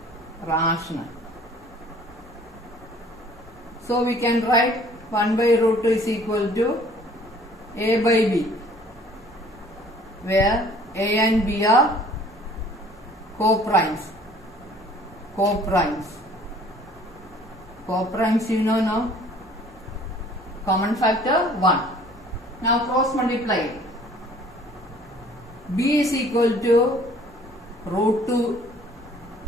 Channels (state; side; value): normal; both; correlation 0.54